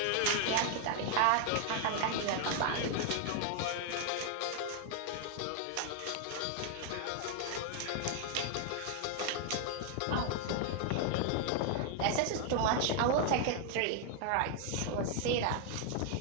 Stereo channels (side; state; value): both; different; correlation 0.00